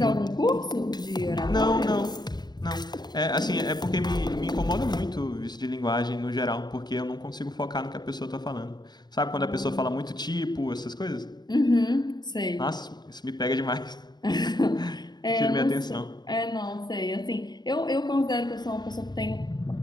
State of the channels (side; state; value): right; late; 0.20 ms